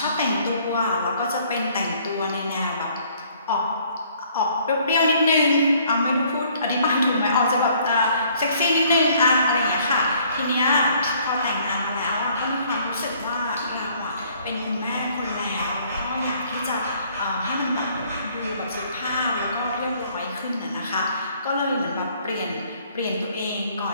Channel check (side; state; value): both; inverted; correlation -0.61